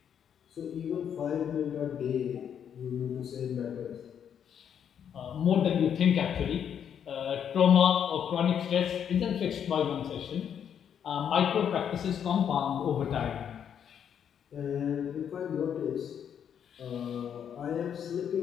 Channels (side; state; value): right; quieter; 8.5 dB